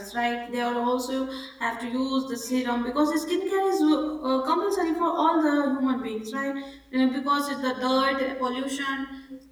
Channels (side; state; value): both; identical; correlation 1.00